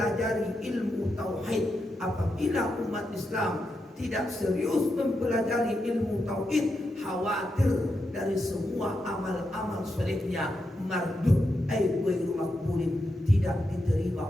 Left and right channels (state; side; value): normal; both; correlation 0.85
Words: mempelajari ilmu tauhid. Apabila umat Islam tidak serius mempelajari ilmu tauhid, khawatir dari semua amal-amal solehnya mardud ghairu maqbulin, tidak diterima